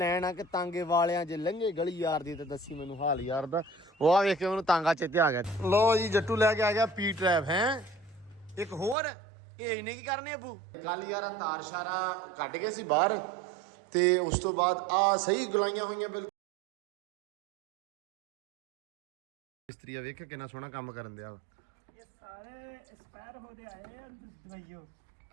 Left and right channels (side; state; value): left; drops out; at 9.0 s